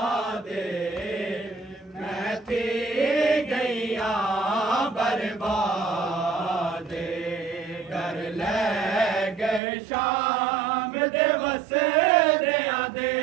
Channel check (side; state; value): left; drops out; at 9.6 s